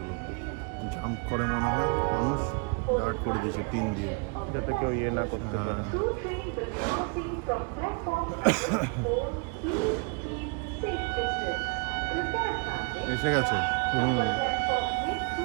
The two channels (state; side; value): quieter; left; 33.8 dB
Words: জাম্প করে মনে হয় মানুষ, গার্ড করে দিয়েছে টিন দিয়ে, যাতে কেউ ইয়ে না করতে পারে। এসে গেছে।